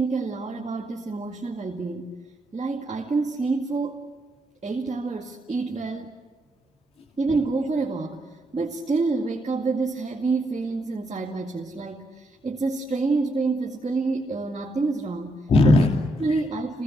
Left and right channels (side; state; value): both; normal; correlation 0.78